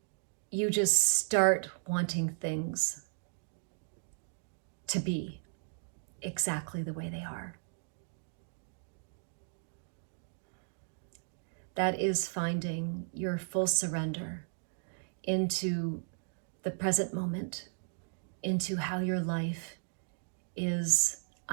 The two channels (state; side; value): silent; left; digital silence